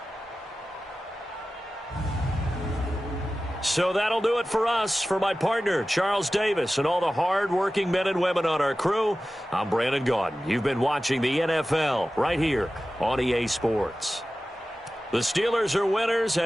So that'll do it for us. For my partner, Charles Davis, and all the hard-working men and women on our crew, I'm Brandon Gaudin. You've been watching the NFL right here on EA Sports. The Steelers are winners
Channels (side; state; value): both; normal; correlation 0.95